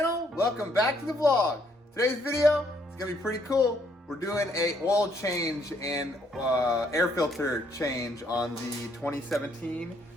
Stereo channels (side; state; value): both; normal; correlation 0.69